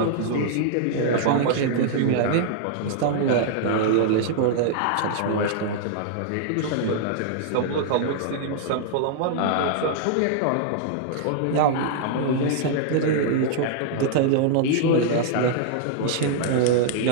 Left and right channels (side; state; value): both; different; correlation -0.01